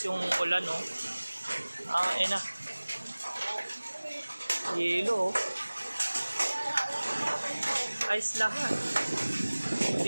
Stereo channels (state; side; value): inverted; both; correlation -1.00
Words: yung ulan, no? Na. Yelo, oh. Ayos lahat.